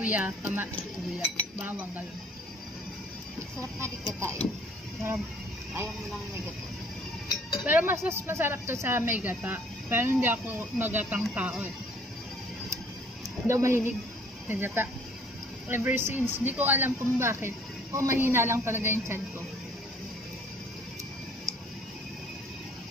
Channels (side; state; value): both; normal; correlation 0.58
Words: bawang, gano'n. Sarap na di gata eh. Sarap. Ayaw mo lang may gata. Pero mas masarap to sa may gata. Pero hindi ako magatang tao eh. Daw mahilig sa gata. Ever since, hindi ko alam kung bakit. O mahina lang talaga yung tiyan ko.